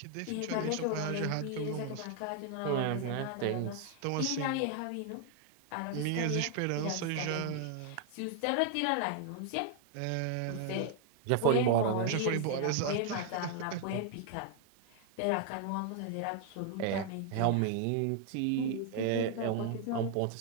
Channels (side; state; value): both; different; correlation 0.00